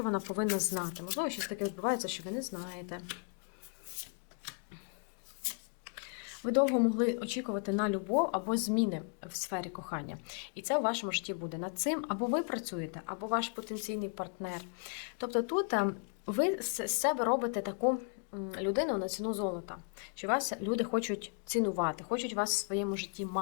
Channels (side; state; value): right; quieter; 39.6 dB